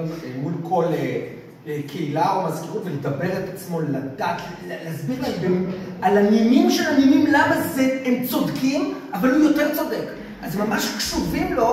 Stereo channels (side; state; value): both; identical; correlation 1.00